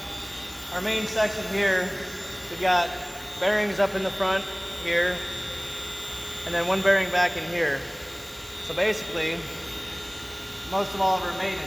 our main section here. We've got bearings up in the front here, and then one bearing back in here. So basically, most of all of our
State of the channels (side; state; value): both; identical; correlation 1.00